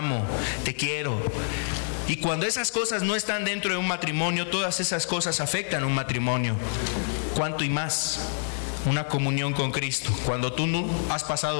te quiero. Y cuando esas cosas no están dentro de un matrimonio, todas esas cosas afectan un matrimonio. ¿Cuánto y más? Una comunión con Cristo. Cuando tú no has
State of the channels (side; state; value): right; silent; 60 dB below the other